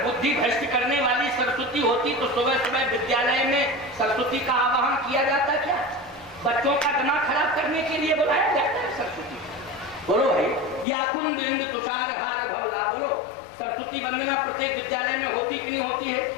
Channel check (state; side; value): drops out; right; at 10.9 s